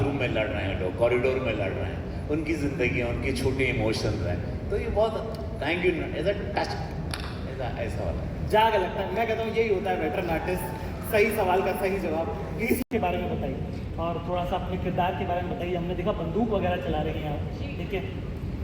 में लड़ रहे हैं लोग, कॉरिडोर में लड़ रहे हैं, उनकी ज़िंदगी है, उनके छोटे इमोशंस हैं। तो ये बहुत thank you as a touch, ऐसा वाला जाग लगता है। मैं कहता हूँ यही होता है वेटरन आर्टिस्ट, सही सवाल का सही जवाब। प्लीज के बारे में बताइए और थोड़ा सा अपने किरदार के बारे में बताइए। हमने देखा बंदूक वगैरह चला रही हैं आप, ठीक है?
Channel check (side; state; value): both; identical; correlation 1.00